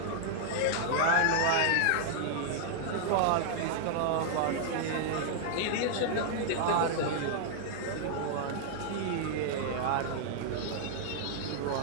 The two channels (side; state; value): both; different; correlation -0.01